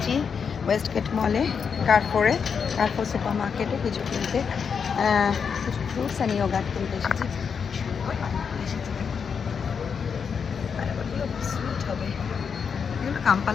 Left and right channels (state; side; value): quieter; right; 6.4 dB